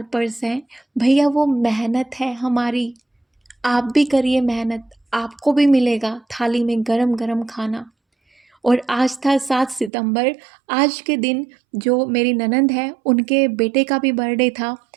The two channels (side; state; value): left; drops out; at 9.9 s